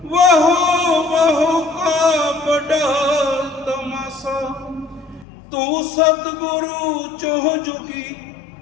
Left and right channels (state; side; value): drops out; right; at 5.2 s